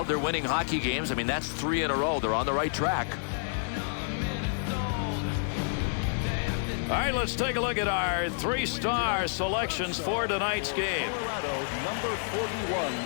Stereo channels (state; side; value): silent; right; digital silence